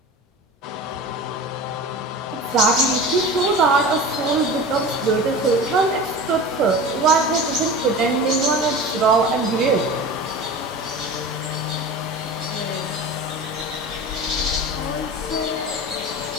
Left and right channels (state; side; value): normal; both; correlation 0.33